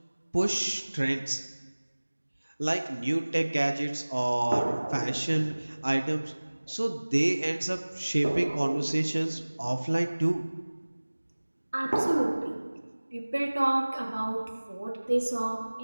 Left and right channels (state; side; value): inverted; both; correlation -1.00